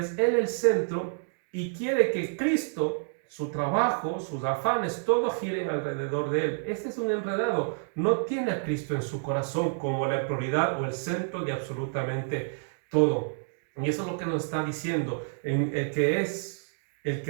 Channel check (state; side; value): silent; left; digital silence